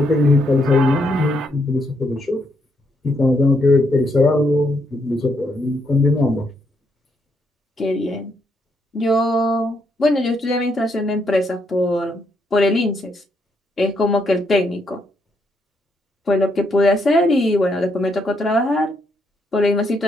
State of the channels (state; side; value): normal; both; correlation 0.75